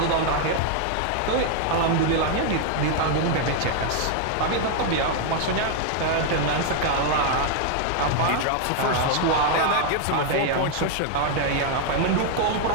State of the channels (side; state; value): both; different; correlation 0.00